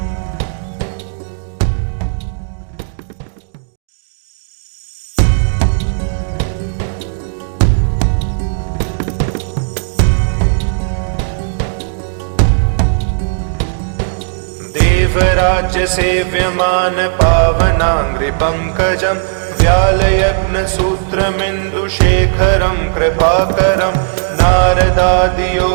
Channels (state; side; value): silent; left; digital silence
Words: देवराज्यसेव्यमान पावनाङ्घ्रिपङ्कजं व्यालयग्नसूत्रमिन्दुशेखरं कृपाकरं